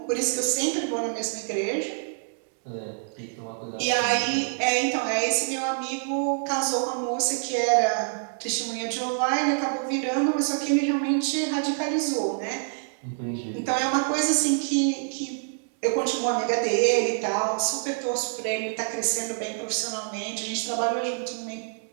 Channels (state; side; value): silent; left; digital silence